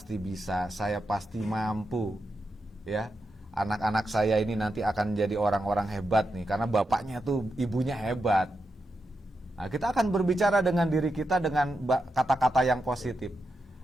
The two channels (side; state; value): both; normal; correlation 0.87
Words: bisa, saya pasti mampu. Ya, anak-anak saya ini nanti akan jadi orang-orang hebat nih, karena bapaknya tuh, ibunya hebat. Nah, kita akan berbicara dengan diri kita dengan kata-kata yang positif.